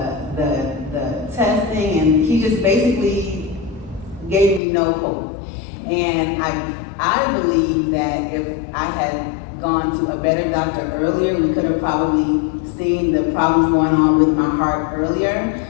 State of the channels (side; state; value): right; drops out; at 4.6 s